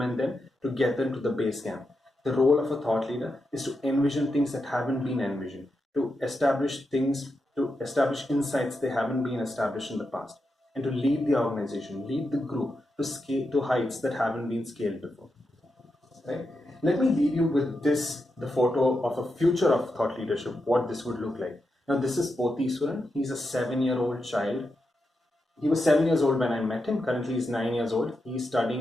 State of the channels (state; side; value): normal; both; correlation 0.87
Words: them to get them to the base camp. The role of a thought leader is to envision things that haven't been envisioned, to establish insights they haven't been established in the past, and to lead the organization, lead the group to scale to heights that haven't been scaled before. Right? Let me leave you with the photo of a future of thought leadership, what this would look like. Now, this is Potheeswaran. He's a 7-year-old child. He was 7 years old when I met him. Currently, he's 9 years old. He's